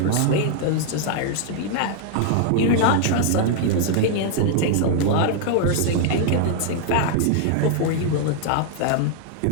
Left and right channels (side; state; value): both; different; correlation 0.00